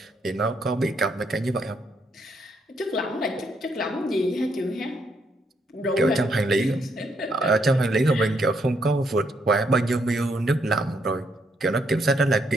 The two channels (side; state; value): both; normal; correlation 0.75